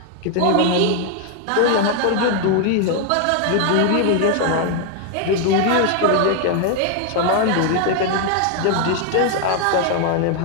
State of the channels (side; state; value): both; different; correlation 0.00